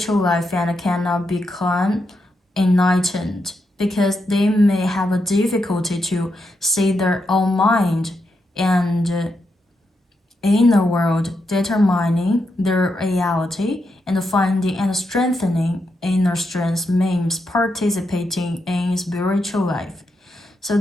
life and cannot become enlightened because they may have a difficulty to see their own mind and inner world, determining their reality and finding and strengthening inner strength means participating in spiritual life. So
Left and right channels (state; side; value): normal; both; correlation 0.83